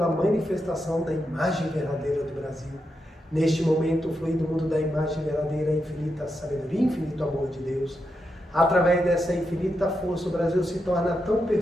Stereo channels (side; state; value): both; normal; correlation 0.85